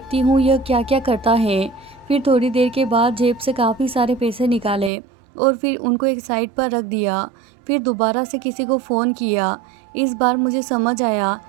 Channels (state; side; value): drops out; left; at 4.9 s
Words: हूँ यह क्या क्या करता है। फिर थोड़ी देर के बाद जेब से काफ़ी सारे पैसे निकाले और फिर उनको एक साइड पर रख दिया। फिर दोबारा से किसी को फ़ोन किया। इस बार मुझे समझ आया